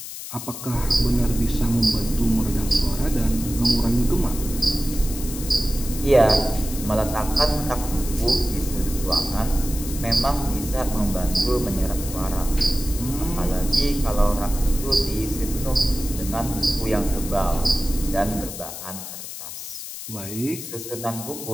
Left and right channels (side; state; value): left; noise; hiss, 10 dB below the sound